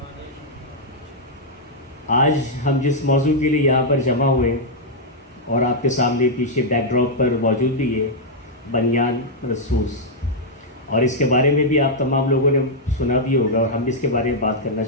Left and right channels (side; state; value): both; normal; correlation -0.04